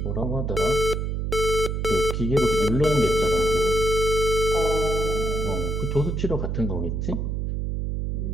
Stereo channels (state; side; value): noise; right; hum, 1 dB below the sound